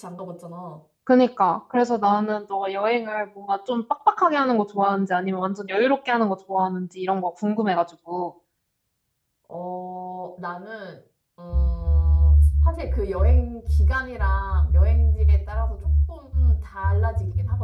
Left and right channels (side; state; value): both; identical; correlation 1.00